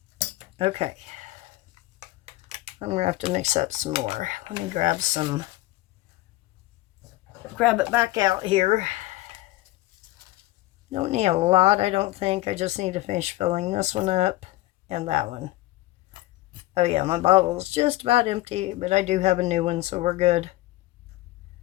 Okay. I'm going to have to mix up some more. Let me grab it back out here. Don't need a lot, I don't think. I just need to finish filling this one up and that one. Oh yeah, my bottle's just about empty, but I do have a new one, so we're good.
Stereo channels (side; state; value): right; quieter; 17.9 dB